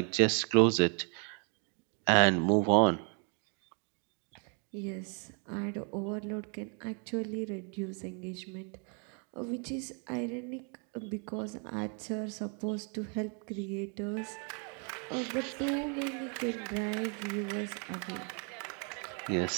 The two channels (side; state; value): left; quieter; 38.3 dB